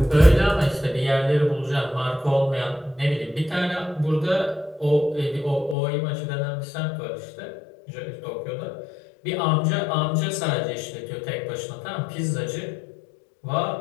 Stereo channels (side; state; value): right; drops out; at 5.8 s